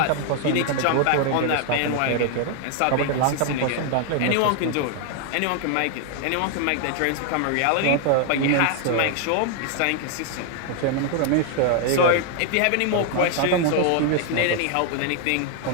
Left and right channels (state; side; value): different; both; correlation 0.00